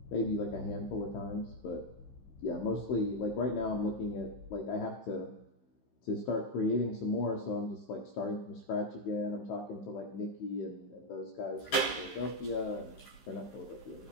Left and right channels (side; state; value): right; late; 15 ms